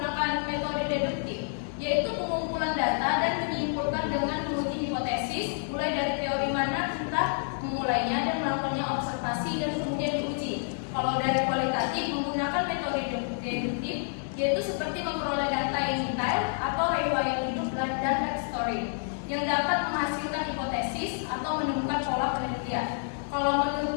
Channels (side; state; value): right; silent; 59 dB below the other